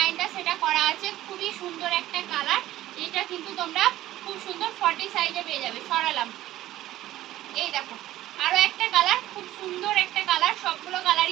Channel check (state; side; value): quieter; left; 14.7 dB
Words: সেটা করা আছে, খুবই সুন্দর একটা কালার। এটা কিন্তু তোমরা খুব সুন্দর 40 সাইজে পেয়ে যাবে, সরালাম। এই দেখো আরো একটা কালার, খুব সুন্দর একটা কালার, সবগুলো